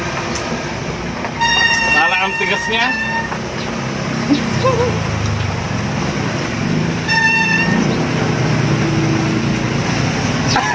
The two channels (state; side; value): identical; both; correlation 1.00